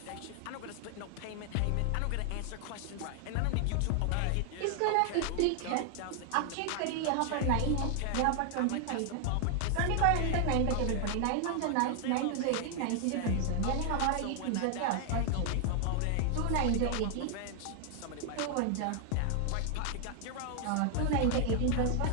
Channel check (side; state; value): both; different; correlation 0.00